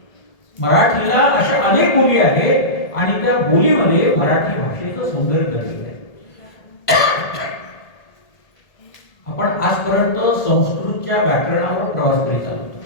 मराठीला, अशा अनेक बोली आहेत आणि त्या बोलीमध्ये मराठी भाषेचं सौंदर्य दर्शवलं आहे. आपण आजपर्यंत संस्कृतच्या व्याकरणावर प्रवास करीत आलो.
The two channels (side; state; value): right; late; 1.7 ms